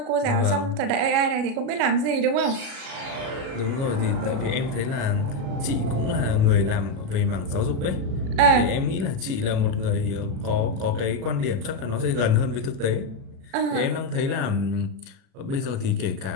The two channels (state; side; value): late; left; 37 ms